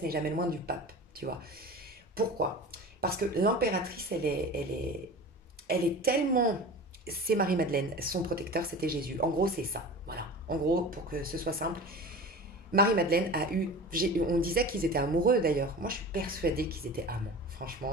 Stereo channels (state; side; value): normal; both; correlation 0.34